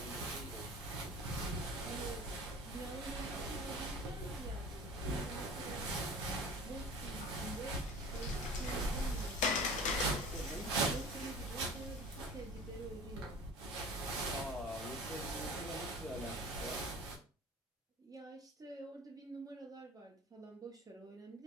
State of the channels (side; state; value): both; normal; correlation 0.39